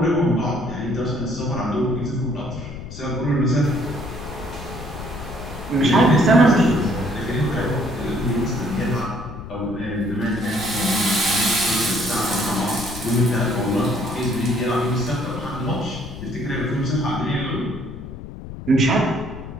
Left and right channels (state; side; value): noise; left; rumble, 11 dB below the sound